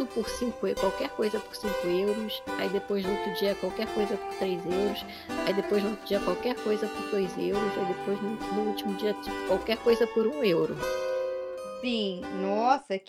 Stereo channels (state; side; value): identical; both; correlation 1.00